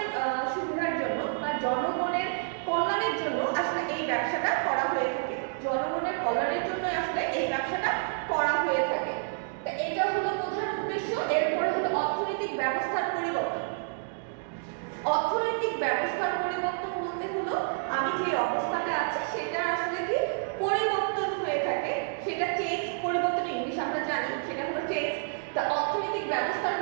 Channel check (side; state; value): left; silent; digital silence